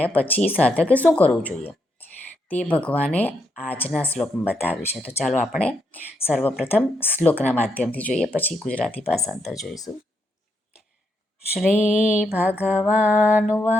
પછી સાધકે શું કરવું જોઈએ તે ભગવાને આજના શ્લોકમાં બતાવ્યું છે. તો ચાલો આપણે સર્વપ્રથમ શ્લોકના માધ્યમથી જોઈએ, પછી ગુજરાતી ભાષાંતર જોઈશું. શ્રી ભગવાન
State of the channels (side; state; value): both; normal; correlation 0.79